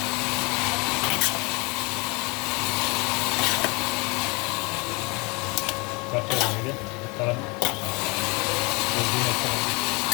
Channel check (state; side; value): quieter; right; 28.4 dB